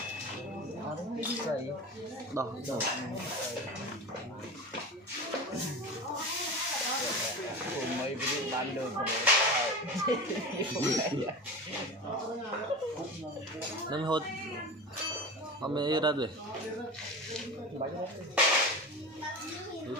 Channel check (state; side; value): normal; both; correlation 0.29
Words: đỏ mấy cái ban đường nên hốt ông ấy ra rồi